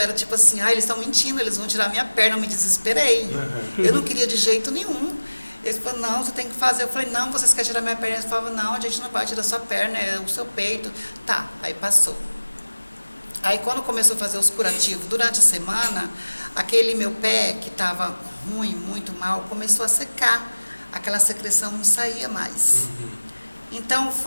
tipo assim, eles estão mentindo, eles vão tirar minha perna, eu me desesperei. Eu não queria de jeito nenhum. Eles falaram, não, você tem que fazer. Eu falei, não, vocês querem tirar minha perna? Eles falavam, não, a gente não vai tirar sua perna, é o seu peito. Tá, aí passou. Aí quando começou a fazer os curativos, durante a semana, aquele meu pé, que estava ruim, muito mal, começou a secar. Aquela secreção não saía mais. Então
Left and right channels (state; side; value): inverted; both; correlation -1.00